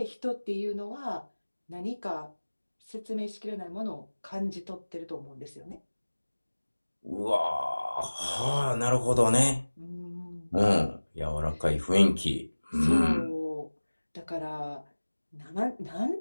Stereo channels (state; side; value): inverted; both; correlation -1.00